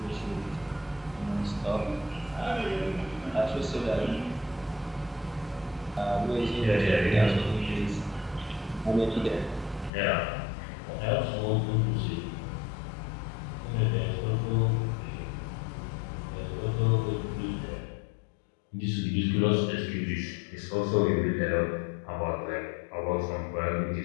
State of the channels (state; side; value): drops out; right; at 9.9 s